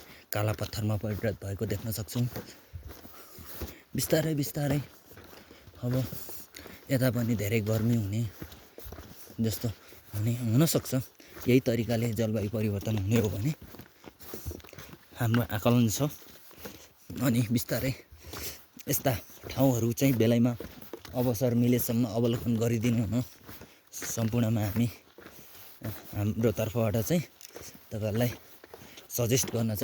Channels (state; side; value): identical; both; correlation 1.00